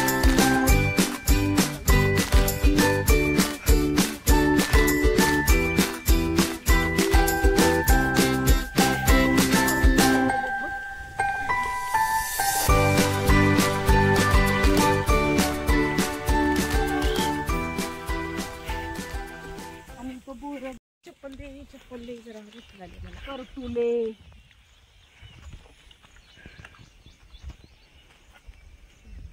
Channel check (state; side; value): identical; both; correlation 1.00